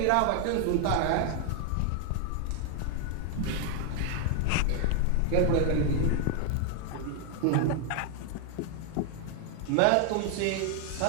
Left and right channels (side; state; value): both; different; correlation 0.00